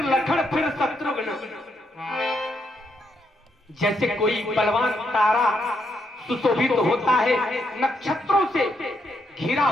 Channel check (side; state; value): both; normal; correlation 0.78